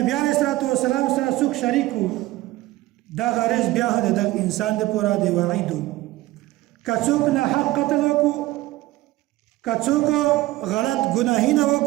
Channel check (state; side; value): quieter; left; 17.6 dB